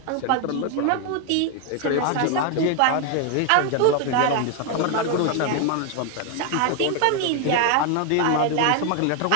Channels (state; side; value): different; both; correlation 0.01